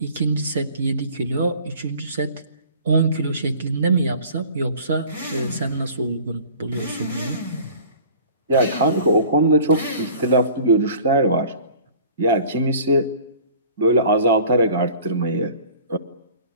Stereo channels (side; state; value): both; inverted; correlation -0.47